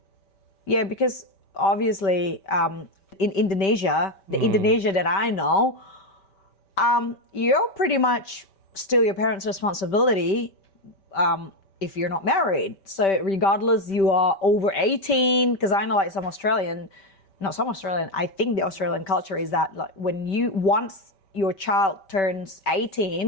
Yeah, because obviously in Indonesia, the Indonesia that I know, you're pretty much still your parents' responsibility if you're not married. So regardless you are over 18, because I know like some Australian, not some Australian, I think the Australian culture is that like when you once your child turns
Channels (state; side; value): late; right; 5.2 ms